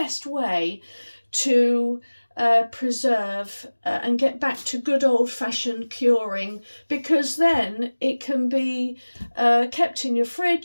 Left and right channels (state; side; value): inverted; both; correlation -1.00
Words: way to preserve and get back to good old-fashioned curing, because then it can be kept in your